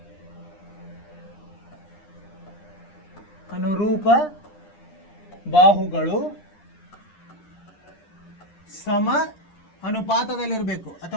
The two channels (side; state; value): right; late; 9.9 ms